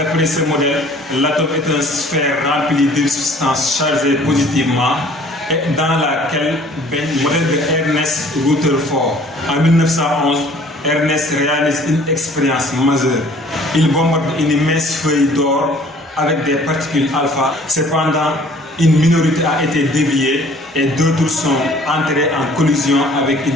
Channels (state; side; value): normal; both; correlation 0.54